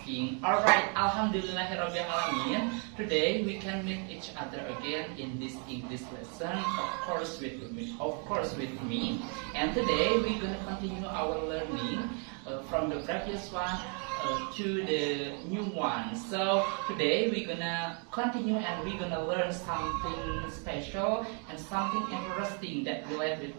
Alright, Alhamdulillahirrahmanirrahim. Today we can meet each other again in this English lesson, of course with me. And today we're gonna continue our learning from the previous one to the new one. So today we're gonna continue and we're gonna learn something special and something interesting that relates with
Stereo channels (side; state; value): left; quieter; 39.7 dB